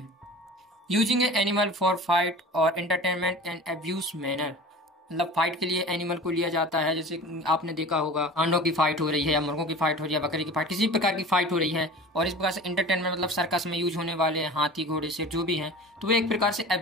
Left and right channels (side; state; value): both; normal; correlation 0.38